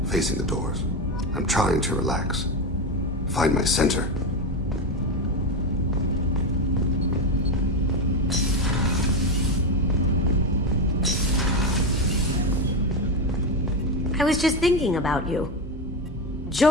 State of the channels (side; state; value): both; normal; correlation 0.13